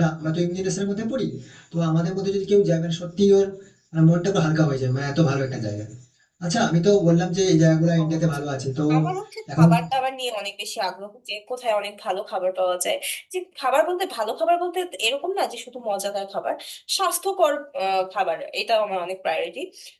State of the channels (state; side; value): identical; both; correlation 1.00